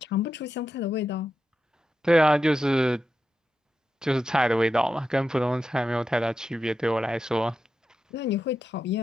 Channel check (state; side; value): normal; both; correlation 0.88